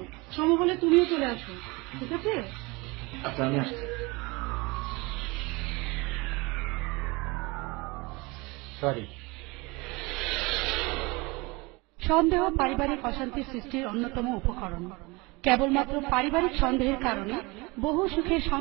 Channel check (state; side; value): quieter; left; 25.2 dB